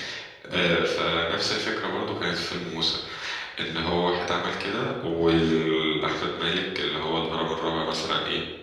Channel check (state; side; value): identical; both; correlation 1.00